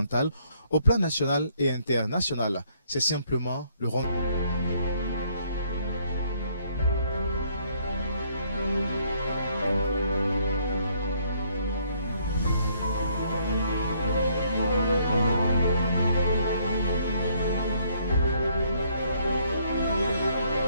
au plan national et international. C'est simplement le rond.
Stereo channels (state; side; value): inverted; both; correlation -0.67